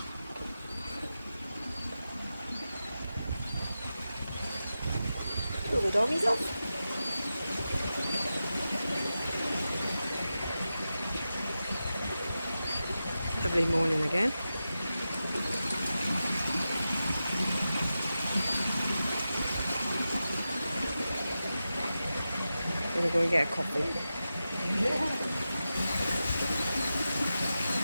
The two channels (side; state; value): both; inverted; correlation -0.92